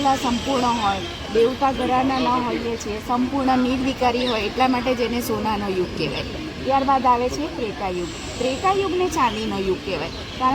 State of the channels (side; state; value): both; identical; correlation 1.00